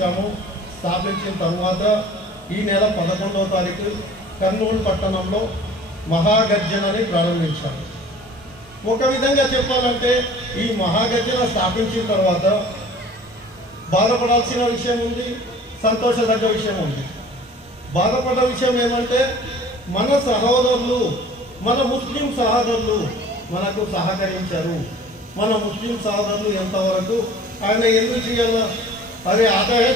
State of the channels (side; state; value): both; normal; correlation 0.47